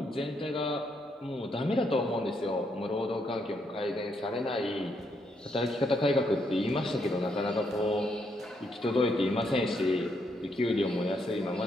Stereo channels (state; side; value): normal; both; correlation 0.76